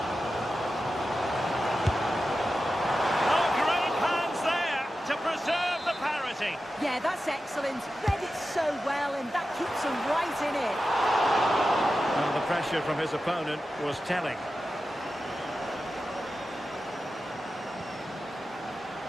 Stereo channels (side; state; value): both; normal; correlation 0.92